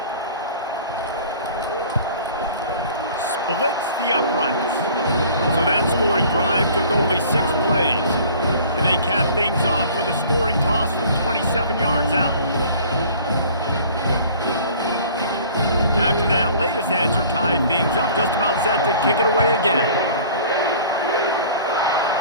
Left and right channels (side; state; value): both; inverted; correlation -0.48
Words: Splits the uprights. So that scoring drive took only 6 plays. And they cap things off with a scoring toss from 27 yards out. After that latest answer tied things up, just about set to kick it away again.